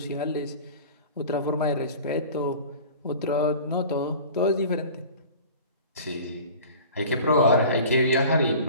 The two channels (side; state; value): both; inverted; correlation -0.41